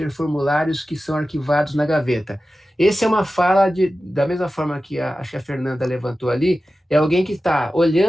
formulários que são arquivados na gaveta. Essa é uma fala da mesma forma que acho que a Fernanda levantou ali, é alguém que está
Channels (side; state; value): both; normal; correlation 0.94